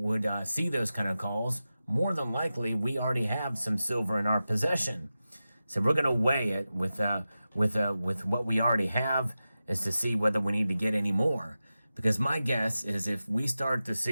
see those kind of calls more than likely we already have some silver in our possession. So we're going to weigh it with what we already have, is to see whether we need to get any more. Because my guess is if we start to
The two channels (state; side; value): inverted; both; correlation -0.93